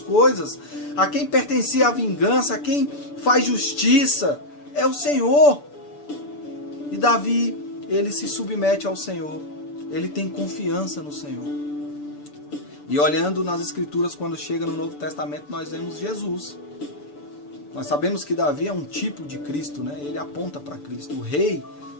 a quem pertencia a vingança, a quem faz justiça, é o Senhor. E Davi, ele se submete ao Senhor, ele tem confiança no Senhor. E olhando nas Escrituras, quando chega no Novo Testamento, nós vemos Jesus. Nós sabemos que Davi é um tipo de Cristo, né? Ele aponta para Cristo. O rei,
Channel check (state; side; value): late; right; 6.9 ms